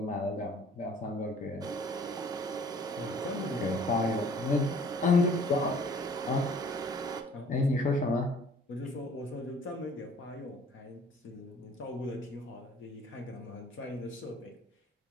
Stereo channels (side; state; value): both; normal; correlation 0.54